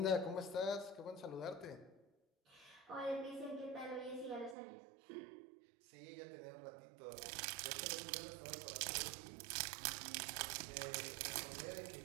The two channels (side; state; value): left; drops out; at 4.5 s